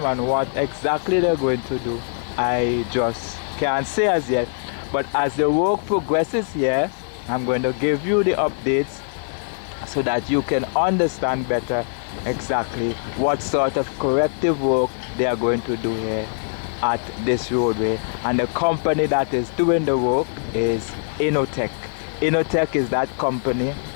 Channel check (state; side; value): silent; right; 64 dB below the other